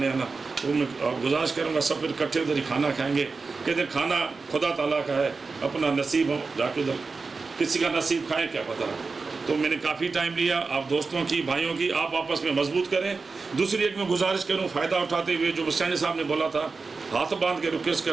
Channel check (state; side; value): quieter; left; 4.3 dB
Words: آنا. تو میں گزارش کروں گا سب پھر اکٹھے ادھر ہی کھانا کھائیں گے. کہتے ہیں کھانا خدا تعالیٰ کا ہے, اپنا نصیب ہو جا کے ادھر. کسی کا نصیب کھائیں کیا پتہ. تو میں نے کافی ٹائم لیا. آپ دوستوں کی بھائیوں کی آپ آپس میں مضبوط کریں. دوسری ایک میں گزارش کروں فائدہ اٹھاتے ہوئے جو حسین صاحب نے بولا تھا, ہاتھ باندھ کے ریکویسٹ